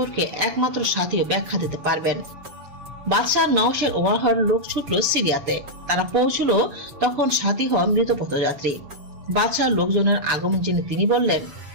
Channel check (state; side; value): late; left; 7.0 ms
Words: একমাত্র সাথীও ব্যাখ্যা দিতে পারবেন। বাদশাহ নওশেরওয়াহর লোক ছুটল সিরিয়াতে। তারা পৌঁছল তখন সাথীহ মৃত পথযাত্রী। বাদশাহ লোকজনের আগমন জেনে তিনি বললেন,